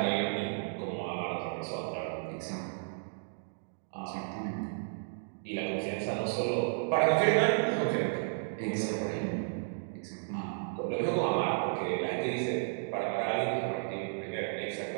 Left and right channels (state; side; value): silent; left; digital silence